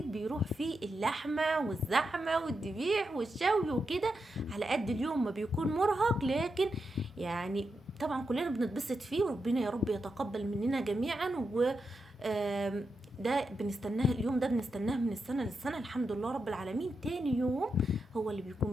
بيروح فيه اللحمة والزحمة والذبيح والشوي وكده. على قد اليوم ما بيكون مرهق، لكن يعني طبعا كلنا بنتبسط فيه، وربنا يا رب يتقبل مننا جميعا. و آم، ده بنستناه، اليوم ده بنستناه من السنة للسنة، الحمد لله رب العالمين. تاني يوم هو اللي بيكون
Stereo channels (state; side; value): normal; both; correlation 0.86